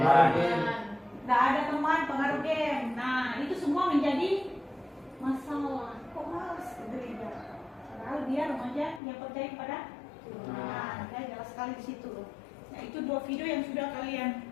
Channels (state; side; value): drops out; right; at 9.0 s